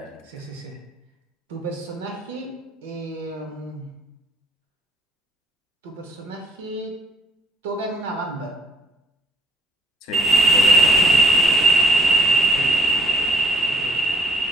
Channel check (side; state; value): both; normal; correlation 0.60